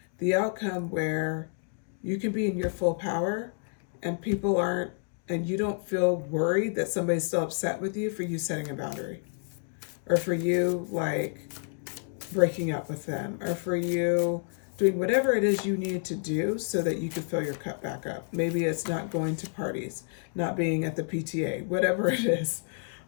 The outcome where you can be in your full power and people aren't, and you don't feel worried that somebody's still upset with you for you setting a boundary, or for you like breaking up with them, or for you doing whatever it is you need to do so that you can fill your cup back up. Maybe it's not going to parties, not being at the PTA, whatever it is.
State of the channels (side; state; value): right; silent; 58 dB below the other